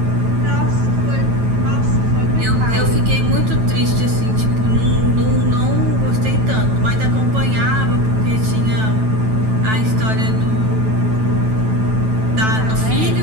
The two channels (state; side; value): late; left; 9.2 ms